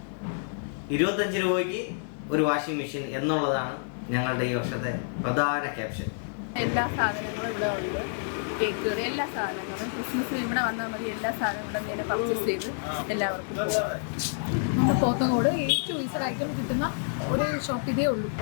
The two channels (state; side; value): silent; right; digital silence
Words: 25 രൂപയ്ക്ക് ഒരു വാഷിംഗ് മെഷീൻ എന്നുള്ളതാണ് ഞങ്ങളുടെ ഈ വർഷത്തെ പ്രധാന ക്യാപ്ഷൻ. എല്ലാ സാധനങ്ങളും ഇവിടെ ഉണ്ട്. കേക്ക്, എല്ലാ സാധനങ്ങളും ക്രിസ്മസിന് ഇവിടെ വന്നാൽ മതി. എല്ലാ സാധനവും ഇവിടെ നിന്ന് പർച്ചേസ് ചെയ്ത് എല്ലാവർക്കും നമ്മുടെ പോത്തങ്കോട് ഏറ്റവും ഈസഡ് ഐറ്റം കിട്ടുന്ന ഒരു ഷോപ്പ് ഇതേ ഉള്ളൂ.